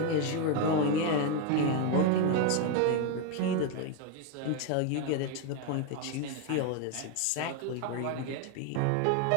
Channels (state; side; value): different; both; correlation 0.01